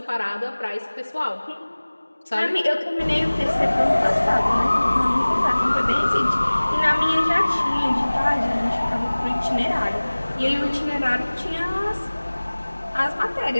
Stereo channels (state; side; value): inverted; both; correlation -1.00